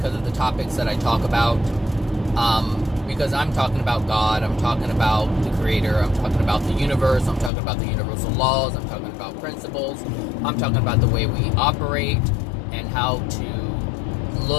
of the topics that I talk about. Because I'm talking about God, I'm talking about the Creator, I'm talking about the universe, I'm talking about the universal laws, I'm talking about principles, I'm talking about the way we operate, and how to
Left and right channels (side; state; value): right; drops out; at 7.5 s